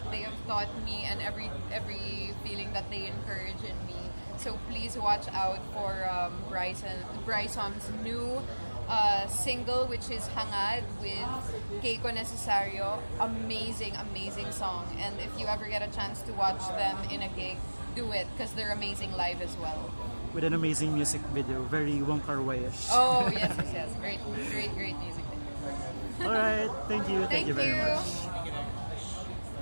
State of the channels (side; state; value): both; inverted; correlation -1.00